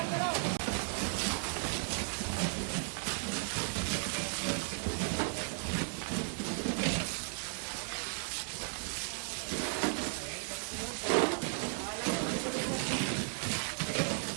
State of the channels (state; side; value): silent; left; 54 dB below the other